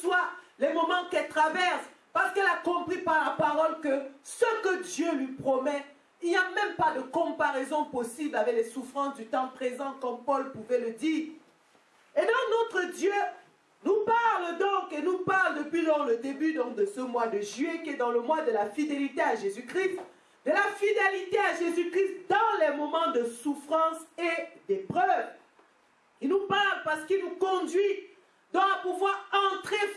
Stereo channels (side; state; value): both; identical; correlation 1.00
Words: les moments qu'elle traverse, parce qu'elle a compris par la parole que ce que Dieu lui promet, il n'y a même pas de comparaison possible avec les souffrances du temps présent, comme Paul pouvait le dire. Et donc notre Dieu nous parle donc, et nous parle depuis le début donc, de ce mois de juillet, qui est dans le mois de la fidélité à Jésus-Christ, de la fidélité à Jésus-Christ dans les moments de souffrance et d'épreuve. Il nous parle parce qu'il nous conduit donc à pouvoir entrer,